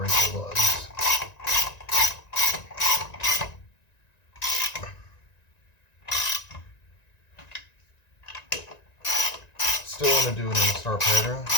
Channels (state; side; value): late; right; 1.9 ms